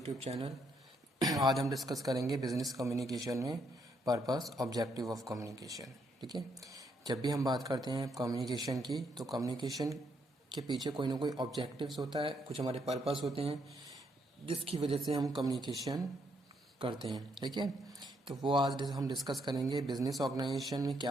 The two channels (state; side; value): normal; both; correlation 0.74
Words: channel. आज हम discuss करेंगे बिजनेस कम्युनिकेशन में पर्पस ऑब्जेक्टिव ऑफ कम्युनिकेशन। ठीक है, जब भी हम बात करते हैं कम्युनिकेशन की तो कम्युनिकेशन के पीछे कोई ना कोई ऑब्जेक्टिव्स होता है, कुछ हमारे पर्पस होते हैं जिसकी वजह से हम कम्युनिकेशन करते हैं। ठीक है, तो वो आज हम डिस्कस करेंगे बिजनेस ऑर्गेनाइजेशन में